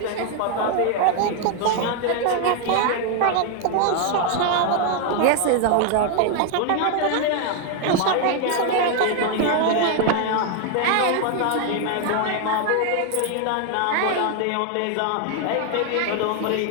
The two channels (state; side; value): different; both; correlation 0.00